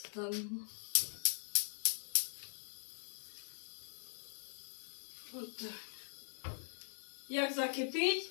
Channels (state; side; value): silent; right; digital silence